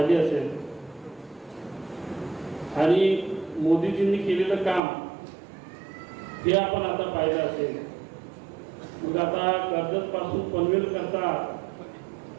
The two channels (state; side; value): drops out; left; at 4.8 s